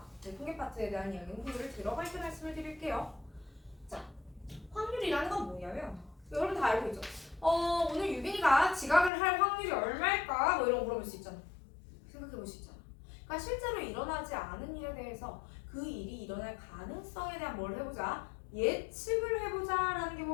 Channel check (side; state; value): right; drops out; at 9.1 s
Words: 네, 통계 파트에 대한 이야기는 후를 들어갈 때 말씀을 드릴게요. 자, 확률이라는 건 뭐냐면 여러분 다 알고 있죠? 오늘 유빈이가 지각을 할 확률이 얼마일까? 뭐 이런 거 물어볼 수 있잖아. 생각해 볼 수 있잖아. 그러니까 실제로 일어나지 않은 일에 대해서 그 일이 일어날 가능성에 대한 뭘 해보자? 예측을 해보자라는 게